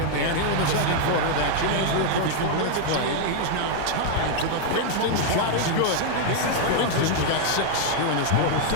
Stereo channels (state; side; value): different; both; correlation 0.00